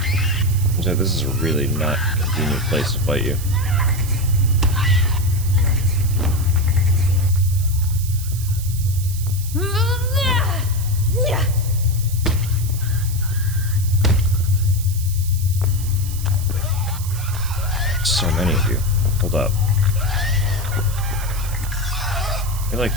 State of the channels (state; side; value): noise; right; hiss, 12 dB below the sound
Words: This is a really not convenient place to fight you. So many of you. Hold up. I feel like